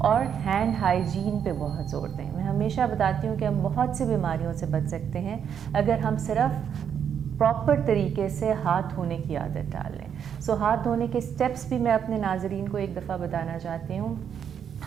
ہینڈ ہائیجین پہ بہت زور دیں. میں ہمیشہ بتاتی ہوں کہ ہم بہت سی بیماریوں سے بچ سکتے ہیں اگر ہم صرف پراپر طریقے سے ہاتھ دھونے کی عادت ڈال لیں. سو ہاتھ دھونے کے اسٹیپس بھی میں اپنے ناظرین کو ایک دفعہ بتانا چاہتی ہوں.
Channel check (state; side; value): quieter; left; 8.1 dB